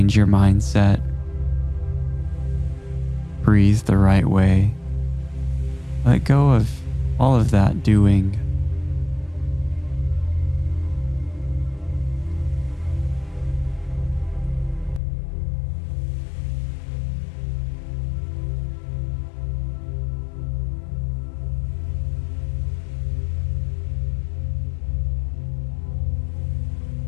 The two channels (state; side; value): drops out; right; at 15.0 s